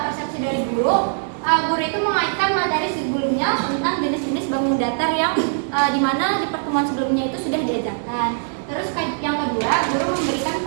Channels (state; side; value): silent; left; digital silence